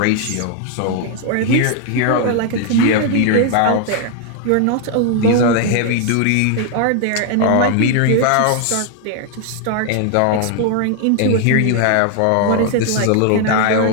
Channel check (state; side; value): different; both; correlation 0.00